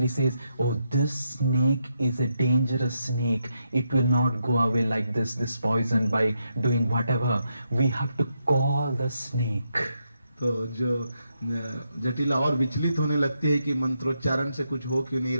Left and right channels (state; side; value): inverted; both; correlation -0.81